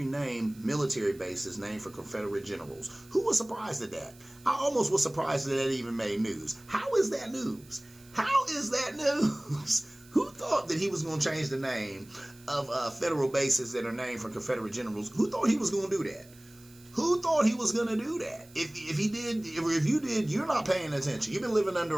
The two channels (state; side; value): noise; right; hiss, 24 dB below the sound